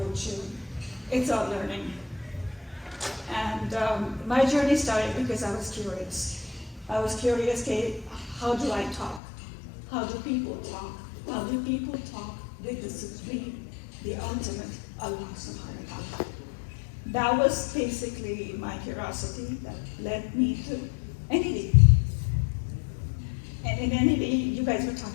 it's about learning. And my journey started because I was curious. I was curious, how do I talk? How do people talk? How do people talk with the supreme, the ultimate Allah subhanahu wa ta'ala? That was basically my curiosity that led me to NED. And in NED, you guys were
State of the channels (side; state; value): right; drops out; at 9.2 s